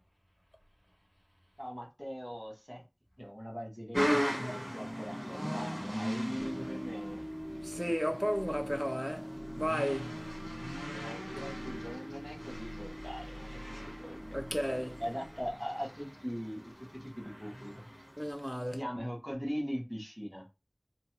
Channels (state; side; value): identical; both; correlation 1.00